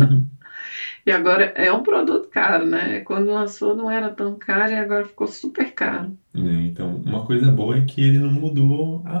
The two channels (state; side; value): inverted; both; correlation -1.00